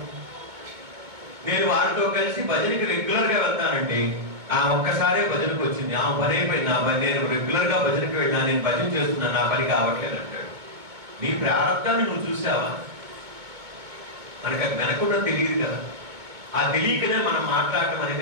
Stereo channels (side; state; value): left; late; 2.2 ms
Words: నేను వారితో కలిసి భజనకి రెగ్యులర్ గా వెళ్తానండి, ఆ ఒక్కసారే భజనకు వచ్చింది, ఆ పని అయిపోయింది, నా పని, నేను రెగ్యులర్ గా భజనకి వెళ్ళినా, నేను భజన చేస్తున్నాను, నా పని కావట్లేదు అంటాడు. నీ ప్రారంభాన్ని నువ్వు చూసావా? మనకు అది వెనకుండా తెలియదు కదా. ఆ తెలియకనే మనం మాట్లాడటం